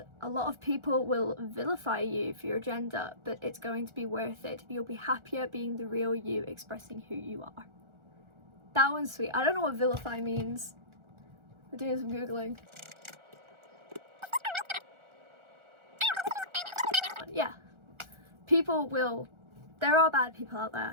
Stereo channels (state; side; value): late; left; 1.4 ms